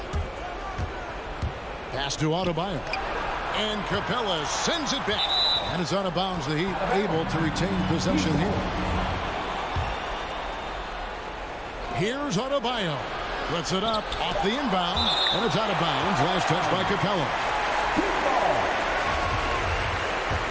Pass to Adebayo. And Capella sends it back. And it's out of bounds. The Heat able to retain possession here. Here's Adebayo. Puts it up off the inbound. And it's out of bounds. Last touch by Capella.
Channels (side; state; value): both; identical; correlation 1.00